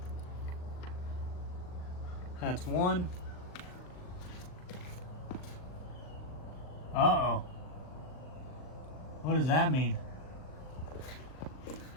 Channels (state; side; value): late; right; 39 ms